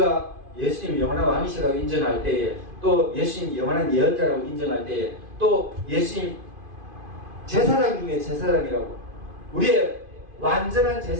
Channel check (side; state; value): left; late; 2.5 ms